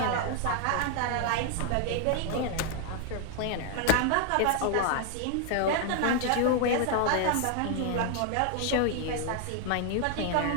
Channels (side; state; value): both; different; correlation 0.00